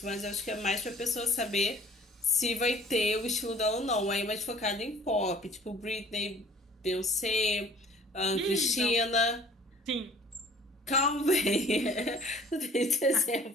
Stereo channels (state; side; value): normal; both; correlation 0.51